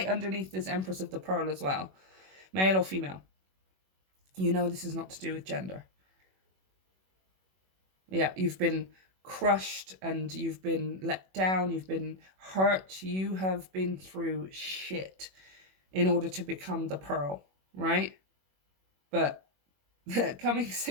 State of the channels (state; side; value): late; left; 21 ms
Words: underneath this Empress of the Pearl as well, male or female. You know this is not to do with gender. Yeah, you've been crushed and you've been let down, you've been hurt, you have been through shit in order to become the pearl, right? But coming